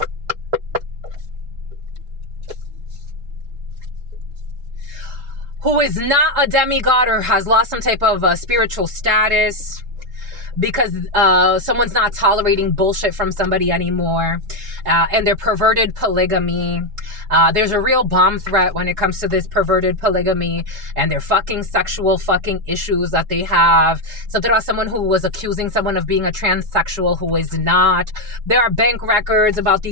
Who is not a demigod or has lost some type of spiritual status because someone's not tolerating bullshit from somebody anymore. And they're perverted polygamy. There's a real bomb threat when it comes to this perverted polygamy and their fucking sexual fucking issues that they have. Something about someone who was accusing someone of being a transsexual who is not. There are bank records about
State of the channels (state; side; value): late; left; 3.7 ms